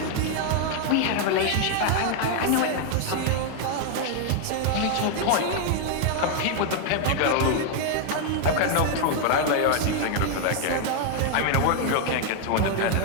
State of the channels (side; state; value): both; different; correlation 0.00